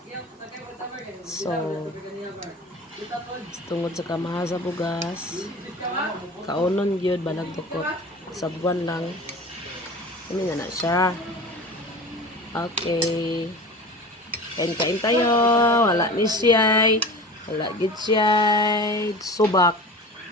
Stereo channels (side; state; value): both; normal; correlation 0.35